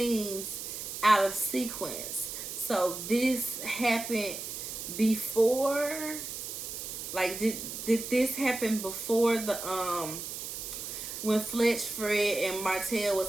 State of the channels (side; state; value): right; noise; hiss, 7 dB below the sound